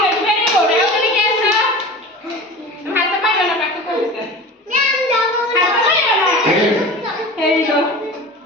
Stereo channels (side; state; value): both; normal; correlation 0.35